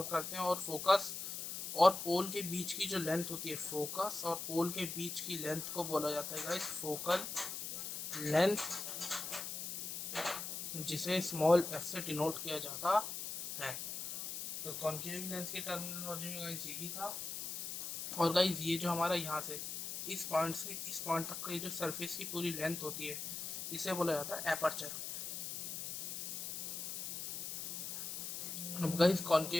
करते हैं। और फोकस और पोल के बीच की जो लेंथ होती है, फोकस और पोल के बीच की लेंथ को बोला जाता है गाइस फोकल लेंथ, जिसे स्मॉल एफ से डिनोट किया जाता है। तो कॉन्केव लेंस की टर्मिनोलॉजी में गाइस यही था। और गाइस ये जो हमारा यहाँ से इस पॉइंट से इस पॉइंट तक का ये जो सरफेस की पूरी लेंथ होती है, इसे बोला जाता है एपर्चर। अब गाइस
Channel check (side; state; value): left; noise; hiss, 5 dB below the sound